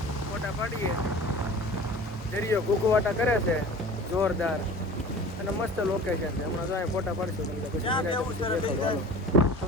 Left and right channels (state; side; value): normal; both; correlation 0.40